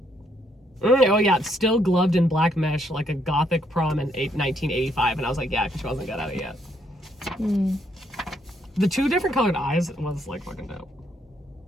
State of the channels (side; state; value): both; normal; correlation 0.72